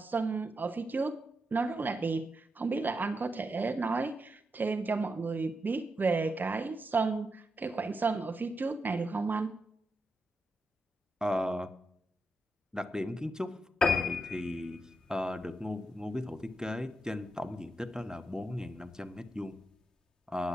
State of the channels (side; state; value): both; normal; correlation 0.85